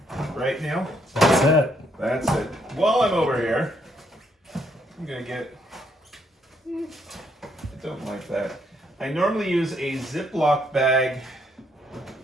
Right, Neil? That's it. That's it. While I'm over here, I'm going to get... I don't like that. I normally use a Ziploc bag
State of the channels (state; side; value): normal; both; correlation 0.72